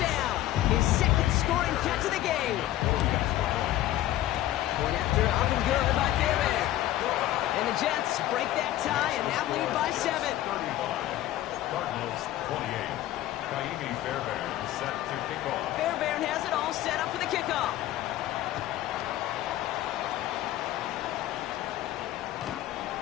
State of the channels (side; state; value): right; quieter; 14.1 dB